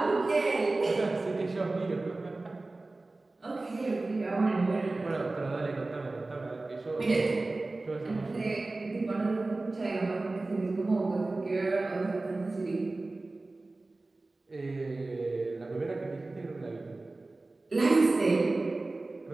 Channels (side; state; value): left; quieter; 3.2 dB